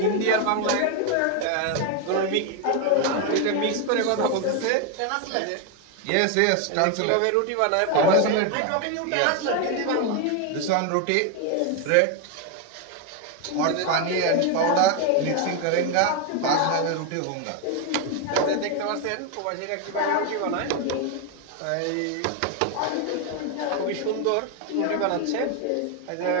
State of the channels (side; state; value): both; different; correlation 0.01